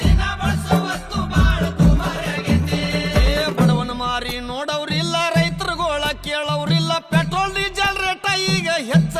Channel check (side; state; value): both; identical; correlation 1.00